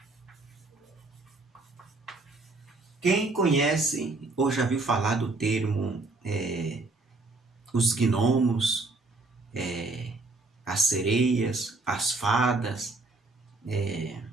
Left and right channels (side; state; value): left; quieter; 3.4 dB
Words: Quem conhece ou já viu falar do termo os gnomos, as sereias, as fadas,